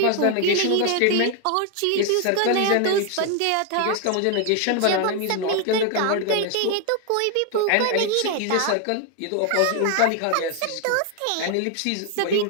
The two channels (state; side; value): different; both; correlation 0.01